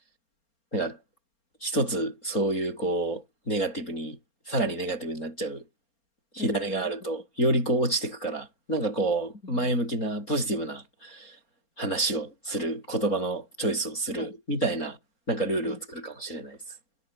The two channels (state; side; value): late; right; 4.3 ms